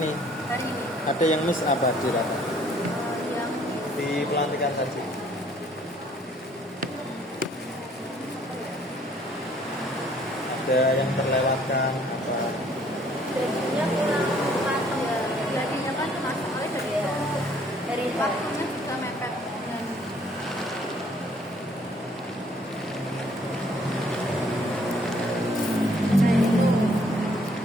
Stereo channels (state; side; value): normal; both; correlation 0.61